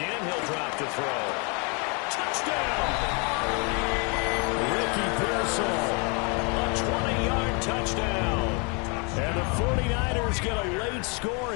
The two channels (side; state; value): right; quieter; 33.5 dB